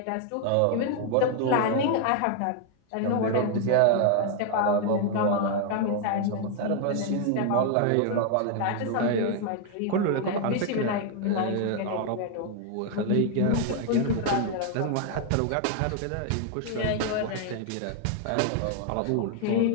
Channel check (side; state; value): both; different; correlation 0.00